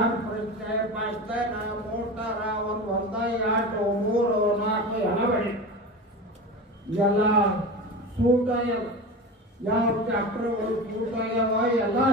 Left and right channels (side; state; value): both; normal; correlation 0.28